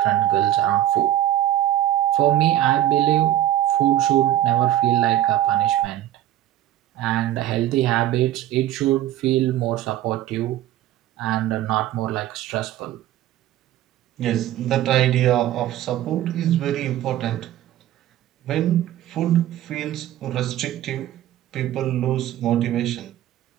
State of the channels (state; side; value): quieter; left; 13.1 dB